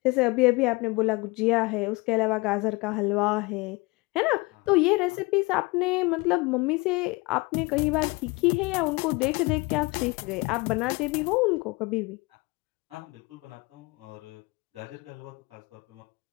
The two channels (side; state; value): right; quieter; 25.5 dB